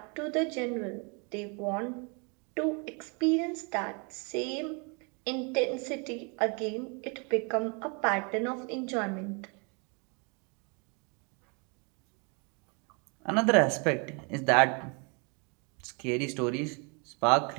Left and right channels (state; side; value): quieter; left; 33.8 dB